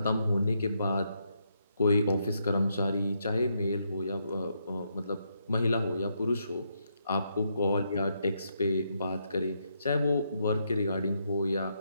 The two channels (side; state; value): both; inverted; correlation -0.78